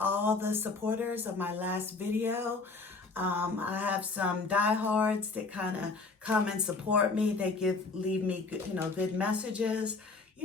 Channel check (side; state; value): right; quieter; 3.9 dB